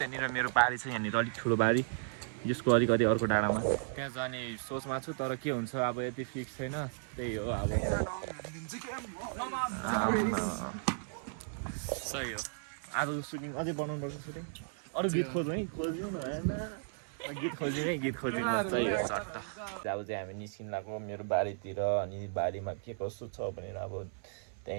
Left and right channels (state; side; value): silent; left; 55 dB below the other